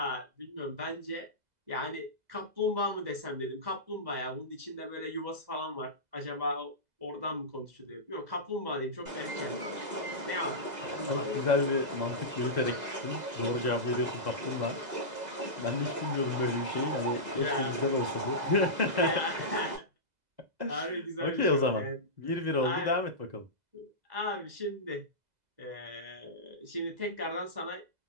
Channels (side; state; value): left; late; 2.0 ms